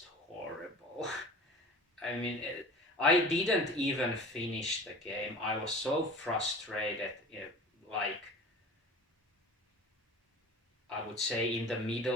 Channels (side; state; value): both; normal; correlation 0.39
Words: horrible. I mean, I didn't even finish the game. I was so frustrated, like I would say in the